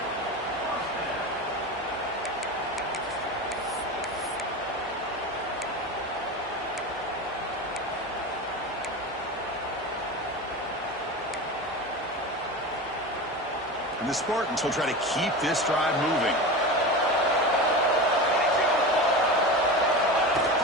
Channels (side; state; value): both; normal; correlation 0.26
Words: And the Spartans will try to keep this drive moving.